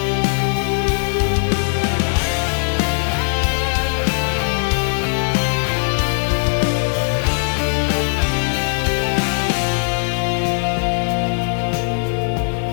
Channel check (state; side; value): silent; right; digital silence